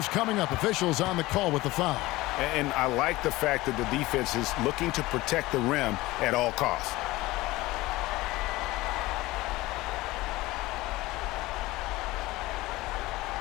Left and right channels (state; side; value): quieter; right; 19.3 dB